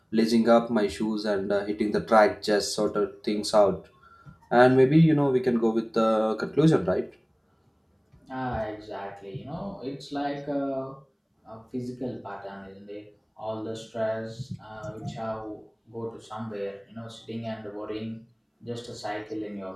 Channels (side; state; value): both; identical; correlation 1.00